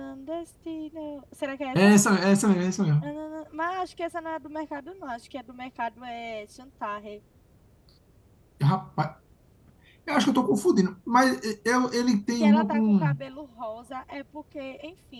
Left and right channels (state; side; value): identical; both; correlation 1.00